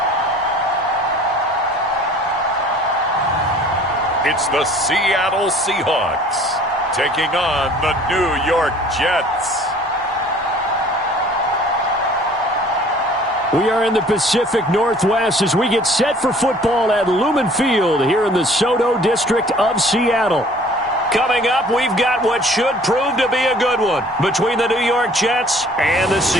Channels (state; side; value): normal; both; correlation 0.52